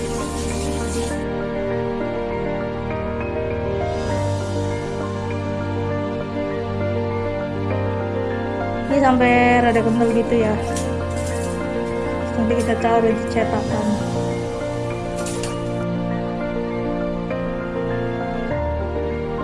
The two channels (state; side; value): identical; both; correlation 1.00